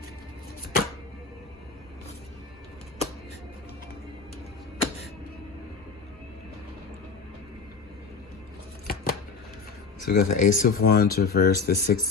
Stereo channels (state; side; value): quieter; right; 4.7 dB